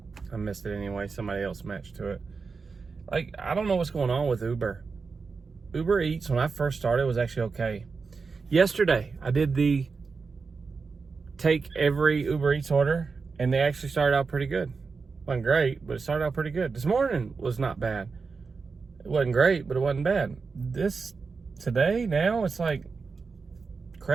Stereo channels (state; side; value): quieter; left; 4.8 dB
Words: I missed it anyway. Somebody else matched to it. Like, I don't know what's going on with Uber. Uber Eats, when I first started, was actually okay. Yesterday, I did the take every Uber Eats order, and they actually started out pretty good. Wasn't great, but it started out pretty good. This morning was not bad. It wasn't great, but it wasn't bad. Today, now, it's like